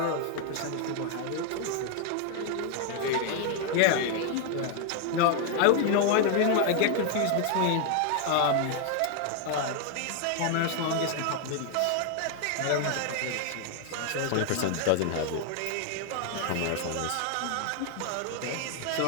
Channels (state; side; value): different; both; correlation 0.00